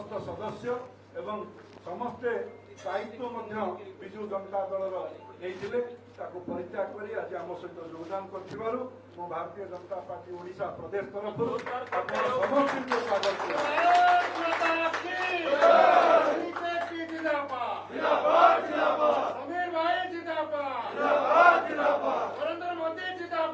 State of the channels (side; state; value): both; identical; correlation 1.00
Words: सदस्य एवं समस्ते दायित्व विजु जनता दलर नहीं परित्याग कर आज आम सहित योगदान कर भारतीय जनता पार्टी ओडिशा प्रदेश तरफ समस्त स्वागत समीर भाई जिंदाबाद, नरेंद्र मोदी